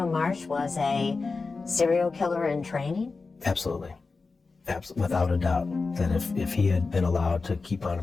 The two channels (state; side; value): quieter; right; 4.2 dB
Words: Marsh was a serial killer in training? Absolutely. Without a doubt. That if he had been allowed to keep on